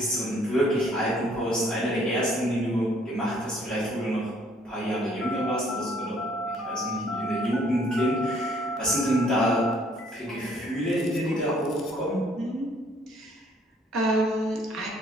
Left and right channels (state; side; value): normal; both; correlation 0.62